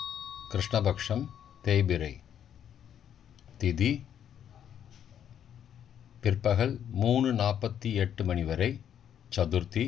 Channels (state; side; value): quieter; right; 9.4 dB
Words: கிருஷ்ணபக்ஷம், தேய்பிரை. திதி பிற்பகல் 3:48 மணி வரை சதுர்த்தி,